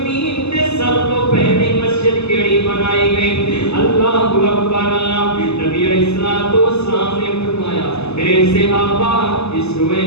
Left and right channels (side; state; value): right; late; 0.80 ms